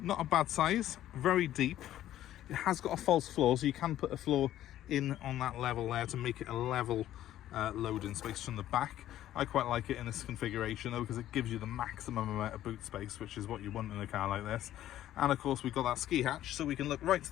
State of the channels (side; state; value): right; quieter; 12.8 dB